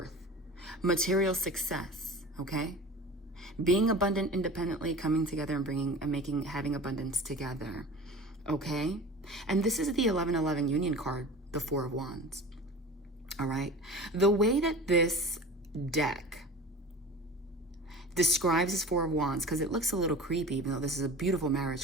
Material success, okay? Being abundant independently, coming together and having abundance together, okay? And this is the 1111 union card, the Four of Wands. All right. The way that this deck describes this Four of Wands, because it looks a little creepy, even though this is a beautiful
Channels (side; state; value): both; normal; correlation 0.37